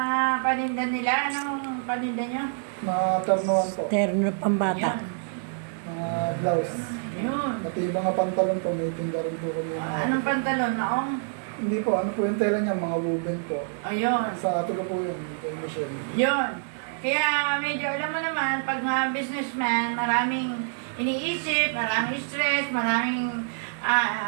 paninda nila, anong paninda nyo? Mga ternuan po. Terno pambata. Mga blouse. Yun. Pati yung mga pantalon po, may tingga rin po kami. Anong pantalon? Naong? Hindi po, ano po yung tela niya, mga woven po. Ayun. Sa ato ko po yun, kay Michelle. Yun. Kaya medyo alam mo naman, pag mga businessman, maraming iniisip, maraming stress, maraming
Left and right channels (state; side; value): silent; left; digital silence